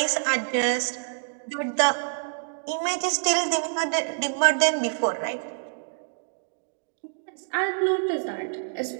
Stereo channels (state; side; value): silent; left; digital silence